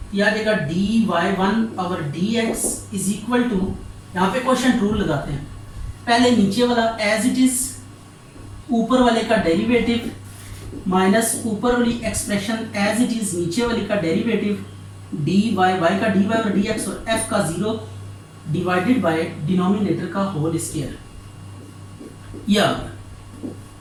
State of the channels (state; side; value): identical; both; correlation 1.00